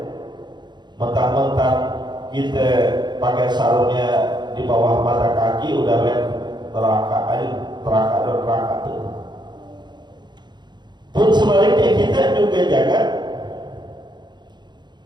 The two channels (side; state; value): left; late; 0.21 ms